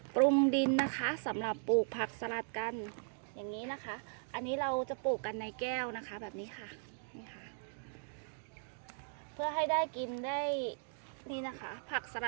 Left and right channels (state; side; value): silent; left; digital silence